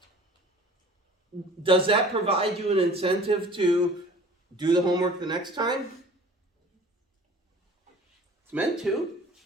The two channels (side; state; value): both; normal; correlation 0.46